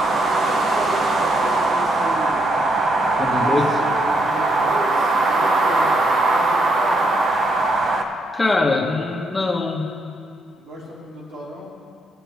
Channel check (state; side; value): normal; both; correlation 0.76